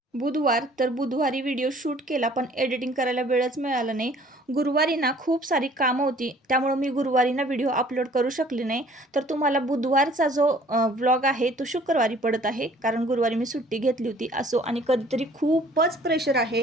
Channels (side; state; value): both; normal; correlation 0.55